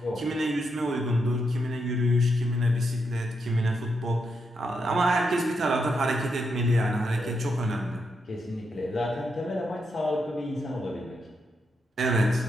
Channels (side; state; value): both; normal; correlation 0.82